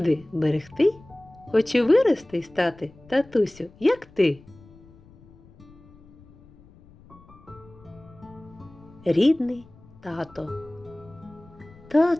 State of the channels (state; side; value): noise; left; rumble, 24 dB below the sound